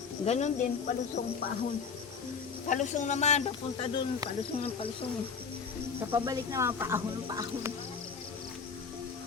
Ganon din, palusong paahon. Palusong naman, papunta doon, palusong ng palusong. Sa pabalik naman, paahon ng paahon.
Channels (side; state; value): right; quieter; 5.7 dB